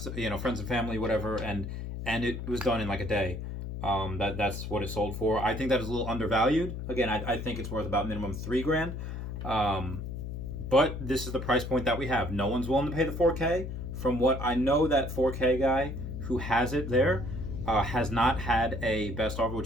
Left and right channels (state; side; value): noise; left; hum, 6 dB below the sound